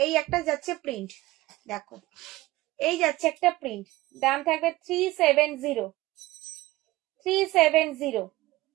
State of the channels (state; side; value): quieter; left; 18.5 dB